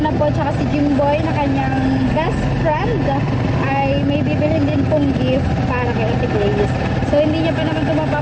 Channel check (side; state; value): both; identical; correlation 1.00